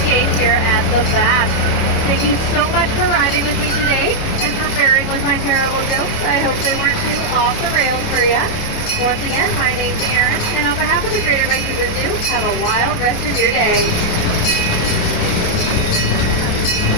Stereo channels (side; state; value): right; late; 28 ms